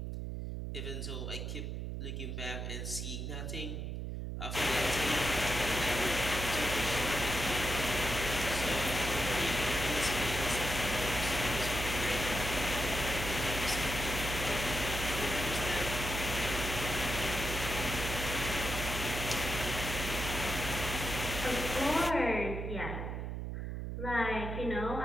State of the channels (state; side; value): noise; right; hum, 4 dB below the sound